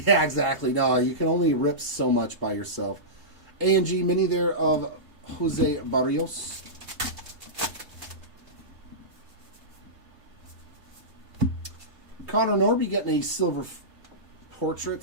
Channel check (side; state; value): left; late; 3.2 ms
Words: exactly. No, you can only rip so much by yourself. A&G mini there of Jose Barrios. Connor Norby getting a silver